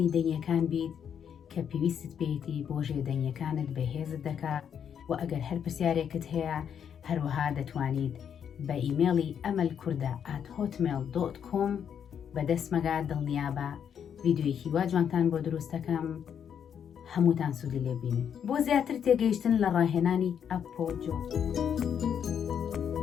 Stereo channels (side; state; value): right; quieter; 8.2 dB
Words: دەنگیەکان بیت کە پێویستت پێیەتی بۆ ژێدەنگیەکانت بەهێزت دەکات و ئەگەر هەر پرسیارێکت هەیە هەروەها دەتوانیت بە ئیمێڵی amalkurda@hotmail.com بەدەستمەگا دڵنیابە ڤیدیۆیەکی وا جوانتان بۆ دروستەکەم هەمووتان سوودی لێبینن بۆ زیاتر تێگەیشتن لە ڕاهێنانی ئەپۆجۆ